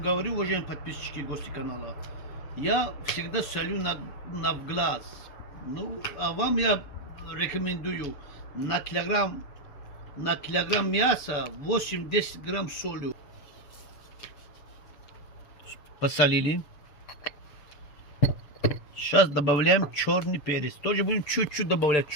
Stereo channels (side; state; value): right; late; 6.9 ms